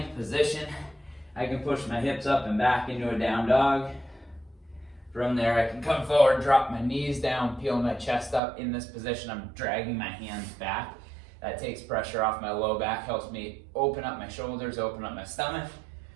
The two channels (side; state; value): left; drops out; at 8.4 s